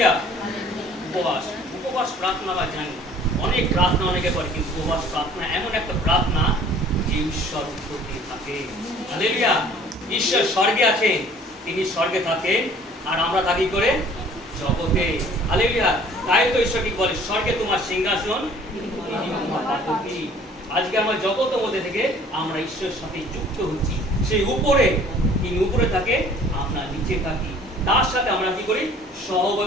উপবাস উপবাস প্রার্থনা আমরা জানি, অনেক প্রার্থনা অনেকে করে, কিন্তু উপবাস প্রার্থনা এমন একটা প্রার্থনা যে ঈশ্বর উত্তর দিয়ে থাকে। হালেলুয়া। ঈশ্বর স্বর্গে আছেন, তিনি স্বর্গে থাকেন, আর আমরা থাকি করে জগতে। হালেলুয়া। তাই তো ঈশ্বর কি বলে, স্বর্গে তোমার সিংহাসন, তোমার পাদপীঠ। আজকে আমরা জগতের মধ্যে থেকে আমরা ঈশ্বরের সাথে যুক্ত হচ্ছি। সেই উপরে, তিনি উপরে থাকে, আমরা নিচে থাকি, তার সাথে আমরা কি করি,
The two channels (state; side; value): normal; both; correlation 0.53